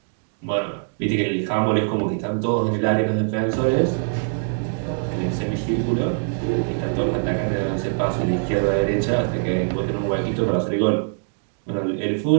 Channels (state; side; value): silent; left; digital silence